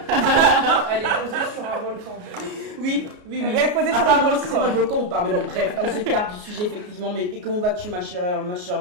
Elle est posée sur un volcan. Oui. Elle est posée sur Ah, un bon, c'est volcan. pas le volcan ou pas, mais bon, bref, on s'écarte du sujet, effectivement. Mais et comment vas-tu, ma chère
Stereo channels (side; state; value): left; late; 33 ms